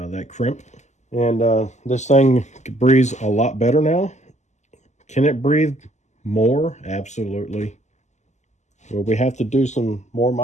crimp. And this thing breathes a lot better now. Can it breathe more? Absolutely. Will we have to do some more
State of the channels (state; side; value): late; right; 0.34 ms